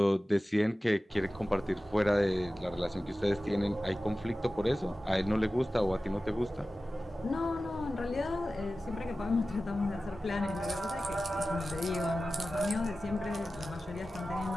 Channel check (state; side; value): normal; both; correlation 0.95